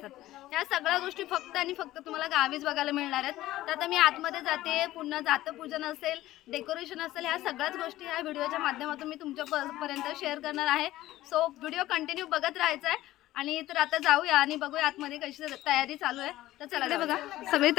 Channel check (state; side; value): quieter; right; 15.7 dB